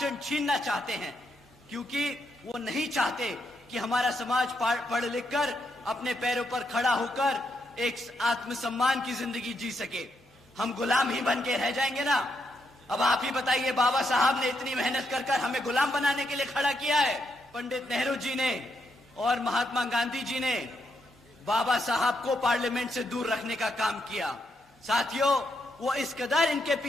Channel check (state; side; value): normal; both; correlation 0.79